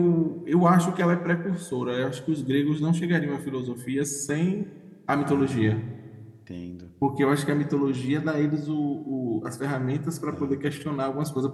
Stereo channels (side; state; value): both; identical; correlation 1.00